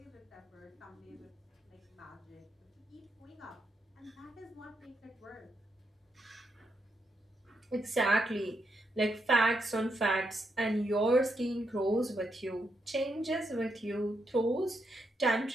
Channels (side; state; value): both; normal; correlation 0.81